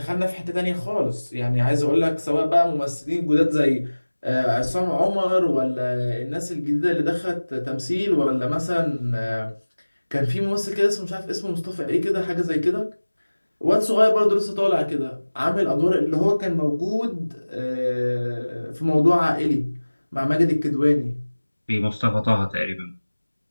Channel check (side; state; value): both; inverted; correlation -1.00